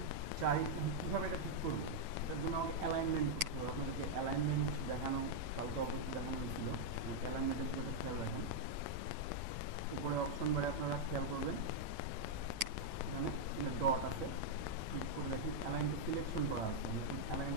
চাই কীভাবে এটা ঠিক করবো, এটার জন্য আমাকে অ্যালাইনমেন্ট করতে হবে। আপনাদেরকে অ্যালাইনমেন্ট দেখানো কালকে অবশ্যই দেখানো হয়েছিল। অ্যালাইনমেন্টের বিষয়টা খেয়াল রাখেন। উপরে অপশন বারে আপনারা খেয়াল করবেন, এখানে ডট আছে, ক্লিক করে দেখেন অ্যালাইন টু সিলেকশন করা আছে। আমি এখন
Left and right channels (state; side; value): late; left; 9.0 ms